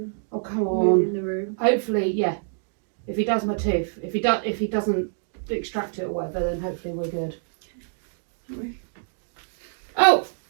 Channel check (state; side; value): silent; left; 61 dB below the other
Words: Oh come on. moving the room. Hopefully, yeah. If he does my tooth, if he doesn't extract it or whatever, then hopefully we're good. Oh,